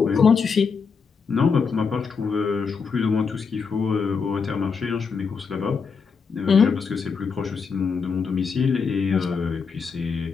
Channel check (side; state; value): right; quieter; 5.5 dB